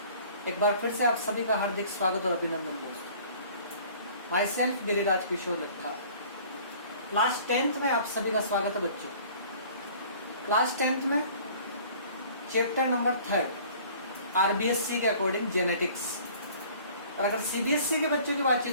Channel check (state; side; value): inverted; both; correlation -0.50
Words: एक बार फिर से आप सभी का हार्दिक स्वागत और अभिनंदन दोस्तों। Myself Giriraj Kishore Laddha. Class 10th में आप सभी का स्वागत है बच्चों। क्लास 10th में चैप्टर नंबर 3 आरबीएससी के अकॉर्डिंग जेनेटिक्स। और अगर सीबीएसई के बच्चों की